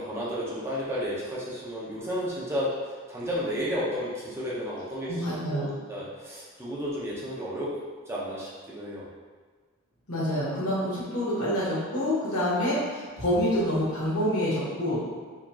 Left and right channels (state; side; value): normal; both; correlation 0.32